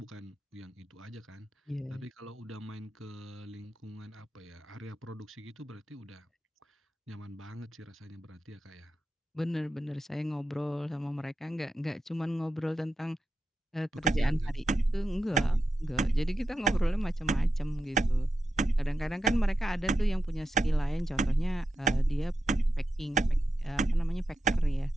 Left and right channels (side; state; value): both; normal; correlation 0.88